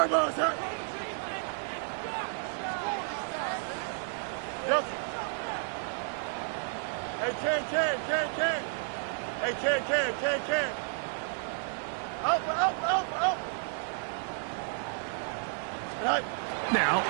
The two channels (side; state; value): left; silent; digital silence